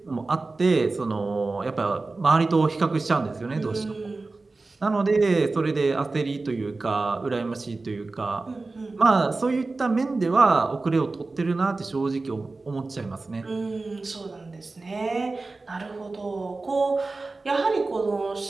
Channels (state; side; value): quieter; left; 3.5 dB